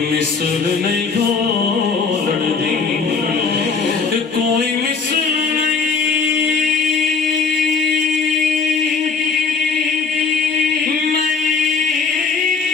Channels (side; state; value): right; quieter; 5.1 dB